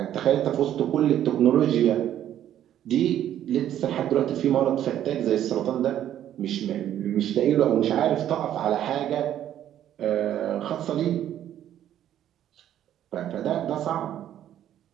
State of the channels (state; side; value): quieter; left; 11.2 dB